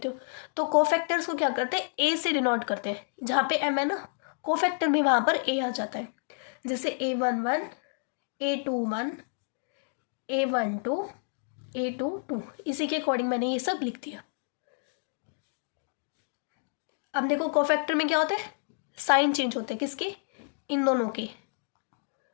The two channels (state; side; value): silent; right; digital silence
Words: हो, तो कोफैक्टर्स को क्या करते हैं A से डिनोट करते हैं। जहाँ पे M है ना कोफैक्टर में, वहाँ पर A आ जाता है। जैसे A11 A21 A12 A22, इसी के अकॉर्डिंग मैंने ये सब लिख दिया। अब देखो कोफैक्टर में क्या होता है, साइन चेंज होते हैं, किसके, इन दोनों के,